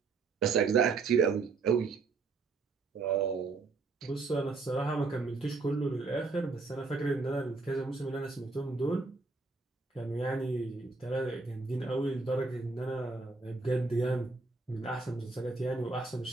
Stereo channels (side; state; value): left; quieter; 4.1 dB